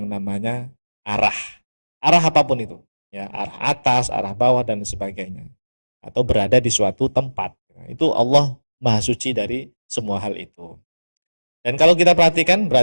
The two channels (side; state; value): both; inverted; correlation -1.00